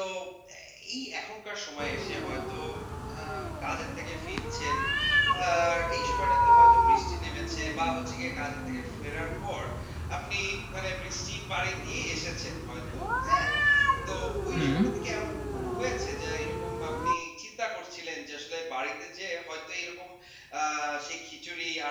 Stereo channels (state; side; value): identical; both; correlation 1.00